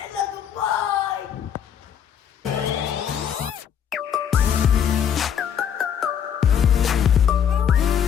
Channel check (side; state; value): right; quieter; 8.5 dB